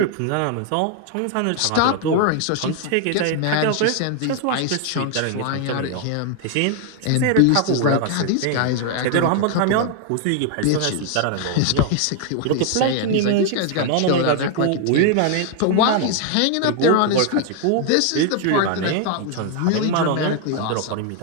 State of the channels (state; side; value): different; both; correlation 0.00